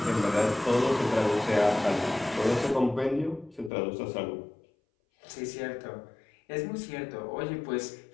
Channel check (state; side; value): drops out; right; at 3.7 s